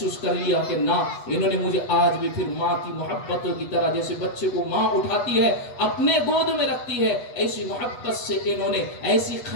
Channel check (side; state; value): right; late; 8.2 ms